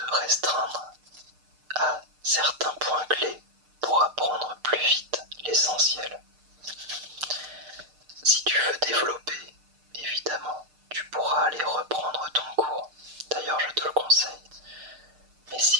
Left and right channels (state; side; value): late; left; 6.6 ms